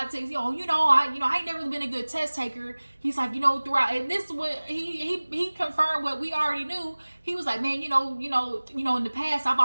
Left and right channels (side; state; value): both; inverted; correlation -1.00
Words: to take, I ain't never really been a good test taker. He's like, throughout, and this is what, he confirmed what we already knew. He was like, man, in the past, I've